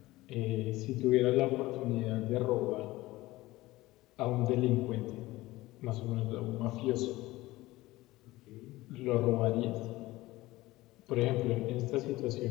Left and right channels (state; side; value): quieter; right; 18.6 dB